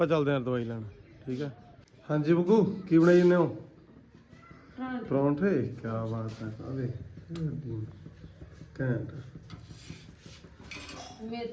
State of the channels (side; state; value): both; identical; correlation 1.00